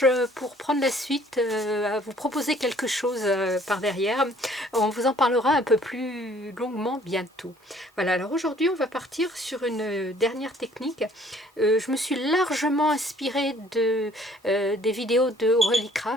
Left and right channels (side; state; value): both; normal; correlation 0.57